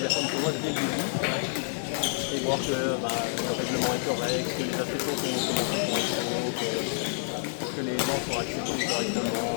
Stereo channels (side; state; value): right; silent; digital silence